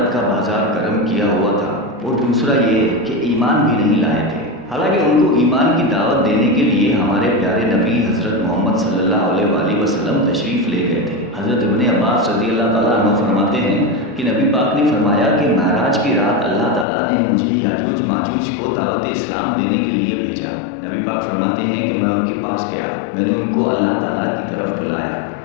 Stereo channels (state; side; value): drops out; right; at 16.9 s